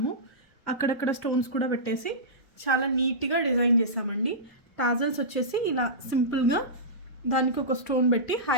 అక్కడక్కడ స్టోన్స్ కూడా పెట్టేసి చాలా నీట్గా డిజైన్ చేసామండి. టాజల్స్ వచ్చేసి ఇలా సింపుల్గా దానికి ఒక స్టోన్ పెట్టి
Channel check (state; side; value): normal; both; correlation -0.18